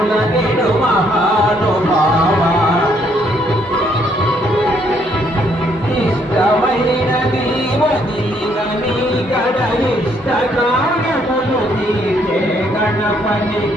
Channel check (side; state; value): both; normal; correlation 0.69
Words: నిడు మహానుభావా ఇష్టమైన దీవదీనని గడ ఇష్టకారములు తీర్చే గణపతి